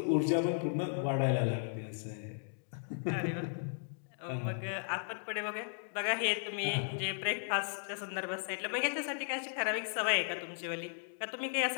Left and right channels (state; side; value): silent; right; digital silence